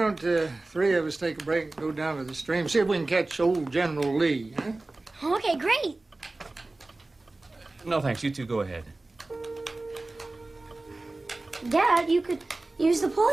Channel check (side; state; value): left; quieter; 3.1 dB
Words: three of us take a break and go down to the stream, see if we can catch old General Lee, huh? Okay, great. No, thanks. You two go ahead. Dad, you could use the pole